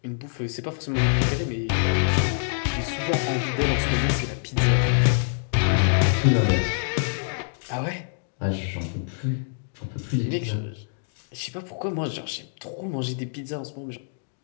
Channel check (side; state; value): right; silent; digital silence